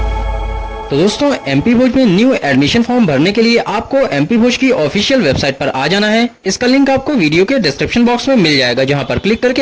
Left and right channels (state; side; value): identical; both; correlation 1.00